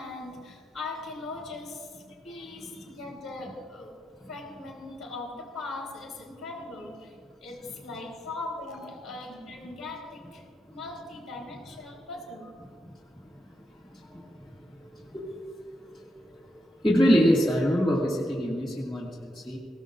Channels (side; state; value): both; normal; correlation 0.85